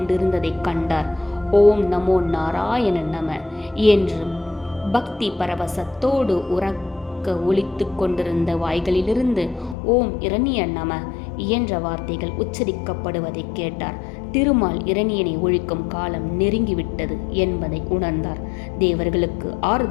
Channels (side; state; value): right; drops out; at 9.8 s